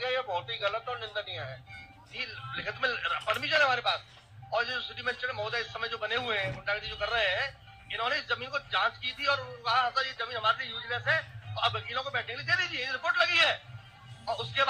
ये बहुत ही गलत और निंदनीय है। जी, लिखित में परमिशन है हमारे पास। और जो सिटी मजिस्ट्रेट महोदय इस समय जो बने हुए हैं, गुंडागर्दी जो कर रहे हैं, इन्होंने इस जमीन को जांच की थी और कहा था ये जमीन हमारे लिए यूजलेस है, तो अब वकीलों को बैठने के लिए दे दीजिए, रिपोर्ट लगी है। और उसके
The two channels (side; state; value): both; identical; correlation 1.00